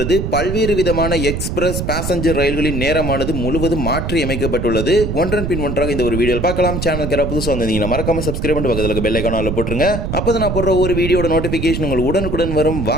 பல்வேறு விதமான எக்ஸ்பிரஸ் பேசஞ்சர் ரயில்களின் நேரமானது முழுவதும் மாற்றி அமைக்கப்பட்டுள்ளது. ஒன்றன் பின் ஒன்றாக இந்த ஒரு வீடியோவில் பார்க்கலாம். சேனலுக்கு புதுசாக வந்தீங்கன்னா மறக்காம சப்ஸ்கிரைப் பண்ணி பக்கத்துல பெல் ஐகானை போட்டுருங்க. அப்பதான் நான் போடுற ஒரு வீடியோட நோட்டிபிகேஷன் உங்களுக்கு உடனுக்குடன் வரும்.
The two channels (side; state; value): right; noise; rumble, 3 dB below the sound